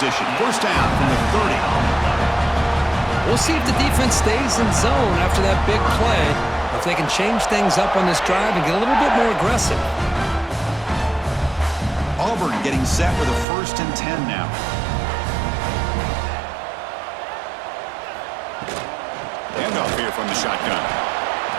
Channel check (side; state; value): left; drops out; at 13.5 s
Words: First down from the 30. We'll see if the defense stays in zone after that big play, if they can change things up on this drive and get a little bit more aggressive. Auburn getting set with a 1st and 10 now. Handoff here from the shotgun.